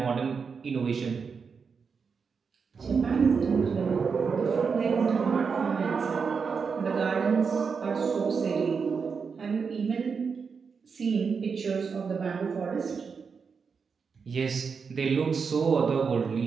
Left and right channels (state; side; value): quieter; left; 5.6 dB